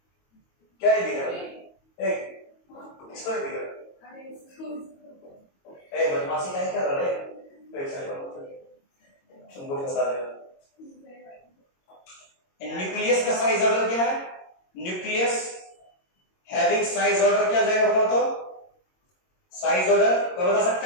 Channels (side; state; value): right; late; 22 ms